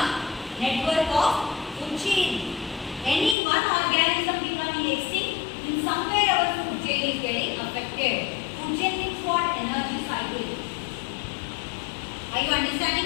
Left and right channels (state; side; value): drops out; right; at 3.4 s